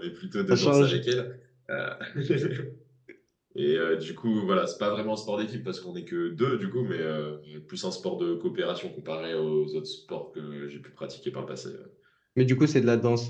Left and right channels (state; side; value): identical; both; correlation 1.00